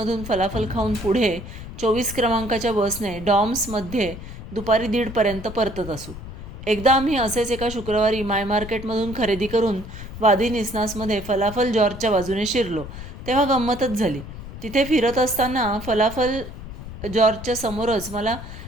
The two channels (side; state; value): left; noise; rumble, 12 dB below the sound